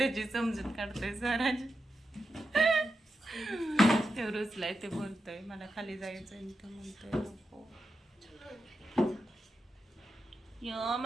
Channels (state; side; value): normal; both; correlation 0.88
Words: समजूत काढतोय स्वराज. ते रुचलाय, ते बोलतोय मला खाली जायचंय आणि ते म्हणतोय नको. यो